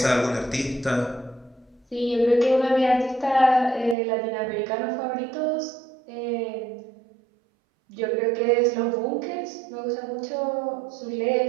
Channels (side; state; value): left; drops out; at 4.0 s